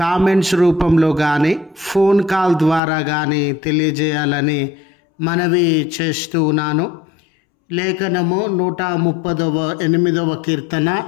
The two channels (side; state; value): right; drops out; at 2.8 s